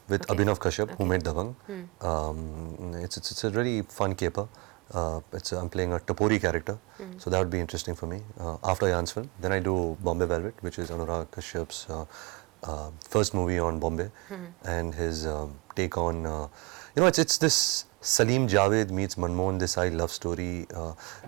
with Abhinav Kashyap, who made Dabang. Hmm. It's a really fun caper. I'm playing a Tapori character, so that would be interesting for me. After Jan's film, then I do Bombay Velvet, which is Anurag Kashyap's first movie on Bombay, and his take on, it's this Salim Javed meets Manmohan Desai love story,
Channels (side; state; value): left; quieter; 27.3 dB